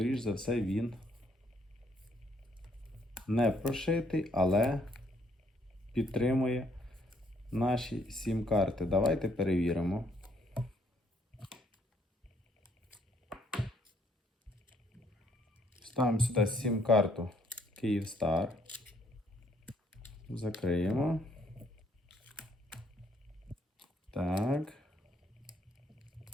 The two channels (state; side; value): normal; both; correlation 0.68